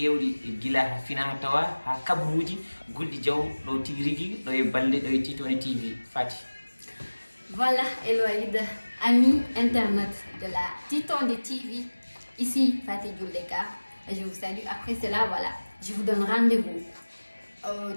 guila ha fina ha tawa ha kabruji gulɗi jaw ɗo tigui rigui ɗo e balɗe ɗo e Titondi TV Fati. Voilà Eloïde, amis internautes de la Titondi TV, ici Fatih Djouleka, je vous salue. Après cela, voilà, je vous donne rendez-vous au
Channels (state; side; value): inverted; both; correlation -1.00